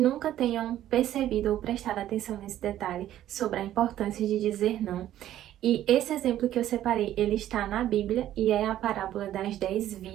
tenham percebido ou prestado atenção nesse detalhe sobre a importância de dizer não. E esse exemplo que eu separei, ele está na Bíblia e é a parábola das 10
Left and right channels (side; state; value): left; quieter; 12.5 dB